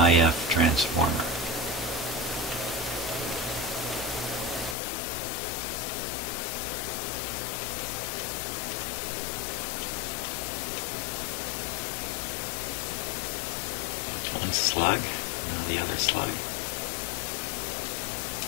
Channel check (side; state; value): right; drops out; at 4.8 s